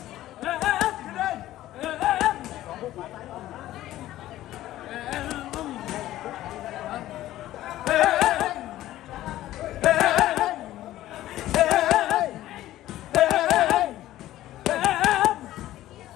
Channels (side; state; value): right; quieter; 14.5 dB